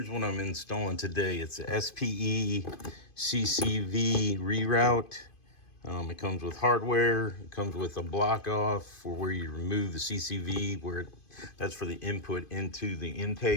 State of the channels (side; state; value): right; late; 2.5 ms